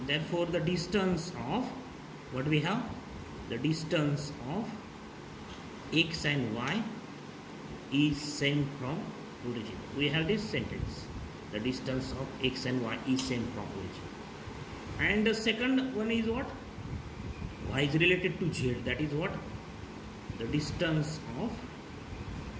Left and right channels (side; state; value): both; identical; correlation 1.00